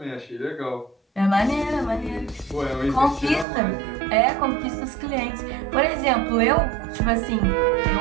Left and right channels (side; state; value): left; drops out; at 3.5 s